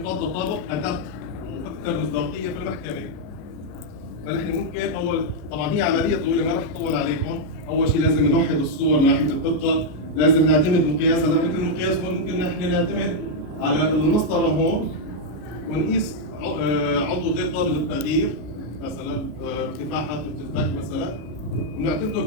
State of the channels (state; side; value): late; right; 33 ms